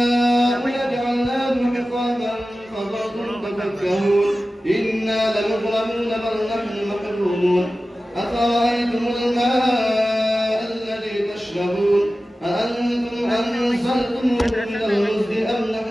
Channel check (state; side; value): normal; both; correlation 0.95